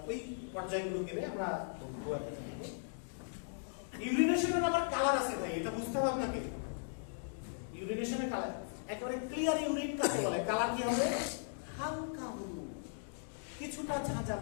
ওই পর্যায়গুলো গেলে আমরা ইউরিনেশনের আবার কালার আছে ভাই, এটা বুঝতে হবে আপনাকে। ইউরিনেশনের কালার একেবারে ক্লিয়ার ইউরিন কাকে বলে? কালার কি হবে? হালকা হলুদ, কিছুটা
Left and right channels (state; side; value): silent; right; digital silence